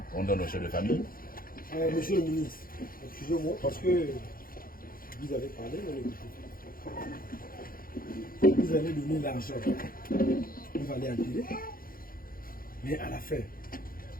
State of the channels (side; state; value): right; late; 0.42 ms